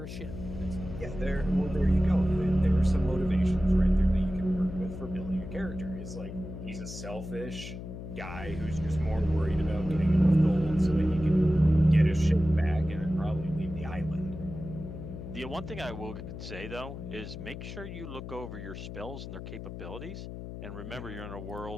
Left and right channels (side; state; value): left; noise; hum, 9 dB below the sound